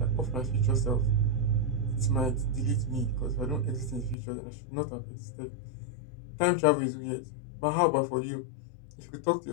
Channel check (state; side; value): drops out; right; at 4.2 s